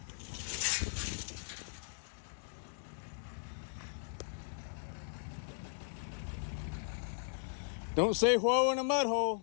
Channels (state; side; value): silent; right; digital silence